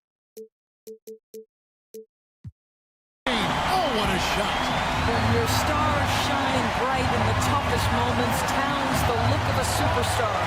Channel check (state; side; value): identical; both; correlation 1.00